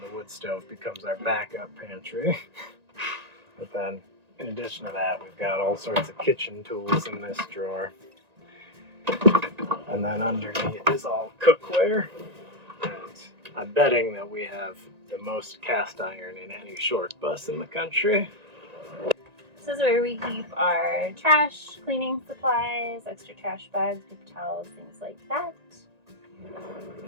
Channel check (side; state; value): left; late; 1.9 ms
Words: the wood stove becomes our backup pantry. But then in addition to that, we've got all sorts of kitchen tools in this drawer. And then underneath is all cookware. And I'm betting that we have the most cast iron in any short bus in the country. This is where we keep our trash, cleaning supplies, extra trash bags, paper towels, things like that.